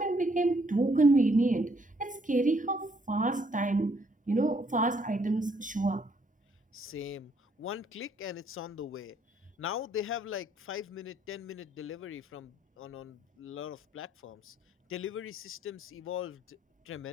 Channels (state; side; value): normal; both; correlation 0.68